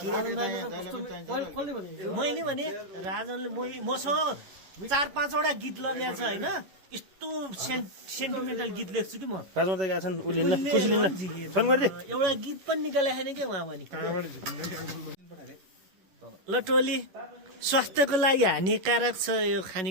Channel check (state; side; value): late; left; 11 ms